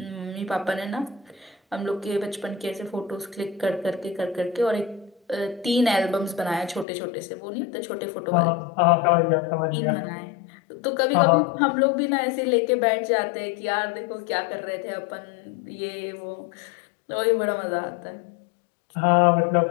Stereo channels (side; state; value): right; drops out; at 6.9 s